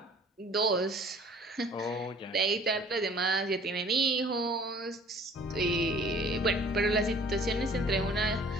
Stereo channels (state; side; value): normal; both; correlation 0.51